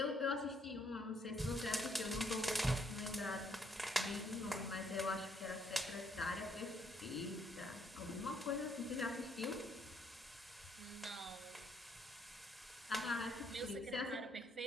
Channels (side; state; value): both; normal; correlation 0.70